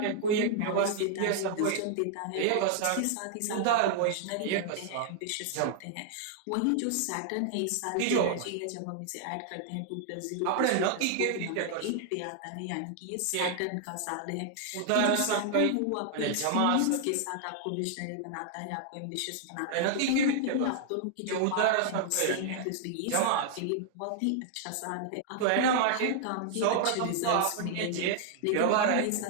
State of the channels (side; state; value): both; different; correlation 0.00